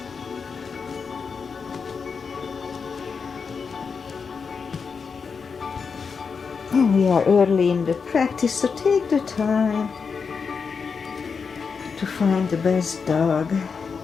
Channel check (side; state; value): right; quieter; 5.5 dB